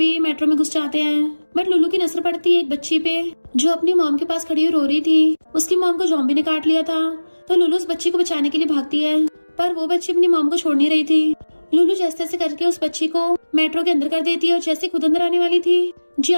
मेट्रो में घुस जाते हैं, बट लुलू की नजर पड़ती है एक बच्ची पे जो अपनी मॉम के पास खड़ी हुई रो रही थी। उसकी मॉम को जॉम्बी ने काट लिया था तो लुलू उस बच्ची को बचाने के लिए भागती है, पर वो बच्ची अपनी मॉम को छोड़ नहीं रही थी। लुलू जैसे तैसे करके उस बच्ची को मेट्रो के अंदर कर देती है और जैसे खुद अंदर आने वाली थी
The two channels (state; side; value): inverted; both; correlation -1.00